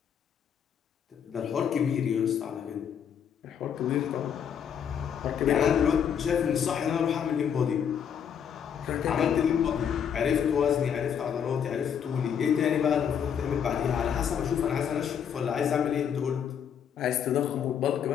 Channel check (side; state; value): right; quieter; 8.1 dB